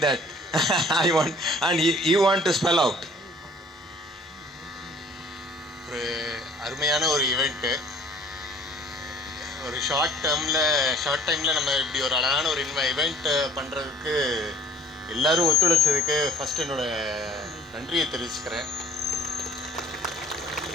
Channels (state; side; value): normal; both; correlation 0.53